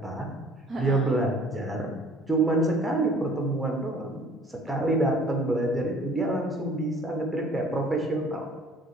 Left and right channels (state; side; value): normal; both; correlation 0.53